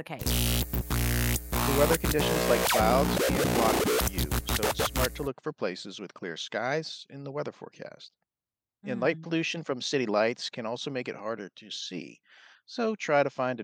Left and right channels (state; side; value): identical; both; correlation 1.00